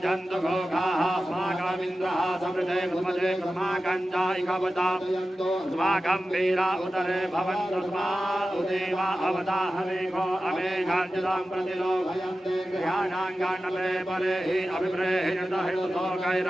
जन्तु घोघाः अस्माकमिन्द्रः समृते कुमते अस्माकञ्जायिकवता अस्माकं वीरा उदरे भवन्तस्मा उदेवा अवताहमेघो अमेघाञ्जलां प्रतिलोभयन्ते गृहाणाङ्गाण्डले परे हि अभिप्रेहितहितुतो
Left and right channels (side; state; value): both; normal; correlation 0.94